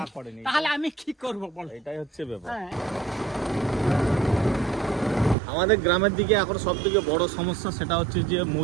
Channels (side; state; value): left; drops out; at 5.4 s